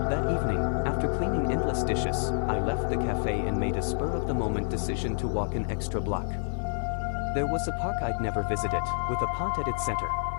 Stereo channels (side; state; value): right; silent; 58 dB below the other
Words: That evening, after cleaning endless dishes, I left the cafe and made a spur-of-the-moment decision to walk an extra block. There was a park I'd never visited, with a pond at its center.